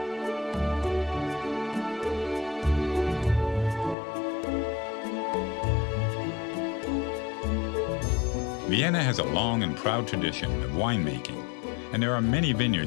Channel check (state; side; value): drops out; right; at 4.0 s